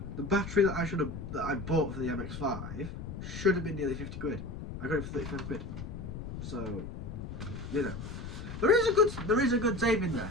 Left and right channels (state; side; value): noise; left; rumble, 8 dB below the sound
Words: The battery that I bought for the MX5 should have been nearly 50 quid. I got it for 35 quid. So, you know, there is a good saving there.